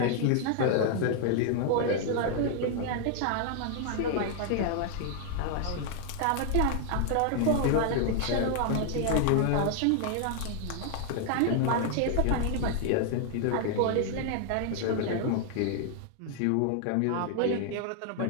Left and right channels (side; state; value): both; different; correlation 0.00